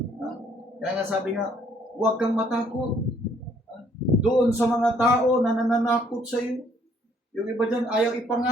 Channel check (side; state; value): both; normal; correlation 0.64